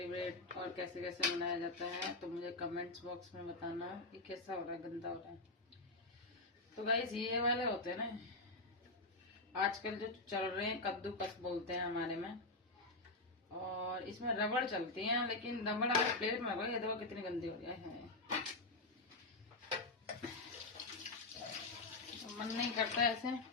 और कैसे कैसे मनाया जाता है, तो मुझे कमेंट्स बॉक्स में बताना कि कैसा हो रहा है, गंदा हो रहा है। तो गाइस, ये वाले होते हैं ना आजकल जो चल रहे हैं, कद्दूकस बोलते हैं हमारे में। और इसमें रबड़ चलती है, लेकिन रबड़ अगर प्लेट में ये देखो कितनी गंदी हो जाए है। मन नहीं करता ऐसे,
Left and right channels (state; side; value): quieter; right; 3.1 dB